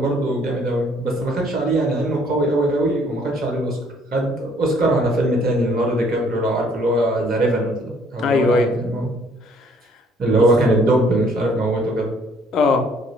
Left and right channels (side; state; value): both; normal; correlation 0.61